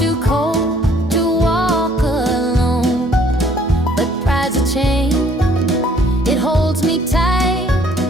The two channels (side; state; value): both; normal; correlation 0.60